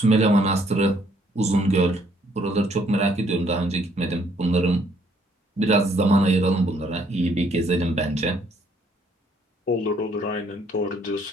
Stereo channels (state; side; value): normal; both; correlation 0.66